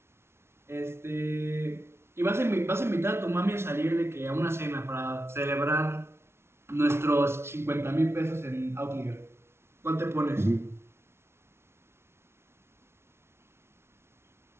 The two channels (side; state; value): left; late; 0.12 ms